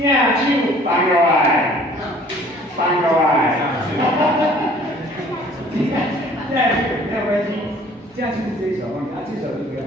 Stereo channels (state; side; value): normal; both; correlation 0.53